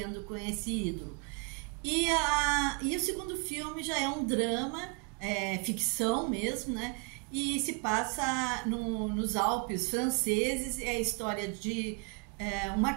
com esse ídolo. E o segundo filme já é um drama, ficção mesmo, né? E se passa nos Alpes franceses, é a história de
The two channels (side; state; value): left; quieter; 32.7 dB